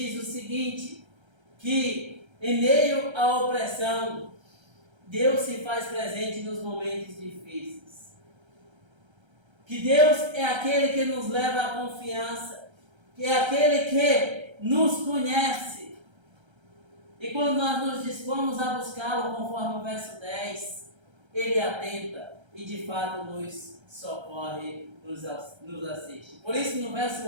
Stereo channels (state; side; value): late; left; 1.3 ms